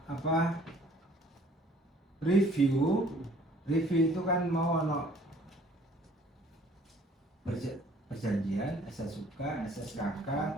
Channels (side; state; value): both; normal; correlation 0.56